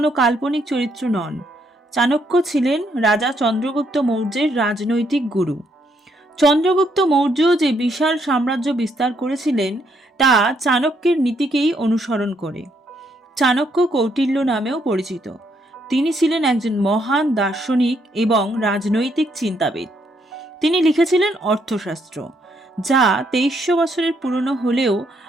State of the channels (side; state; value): both; normal; correlation 0.74